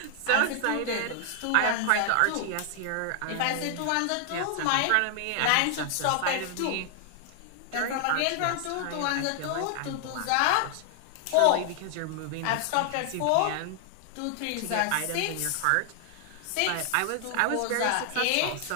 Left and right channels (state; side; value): different; both; correlation 0.00